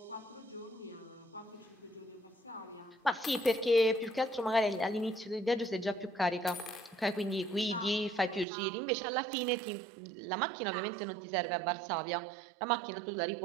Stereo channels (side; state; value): left; drops out; at 8.5 s